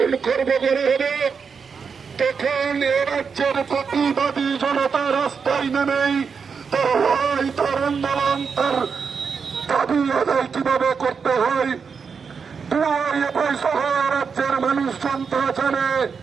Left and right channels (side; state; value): left; quieter; 5.9 dB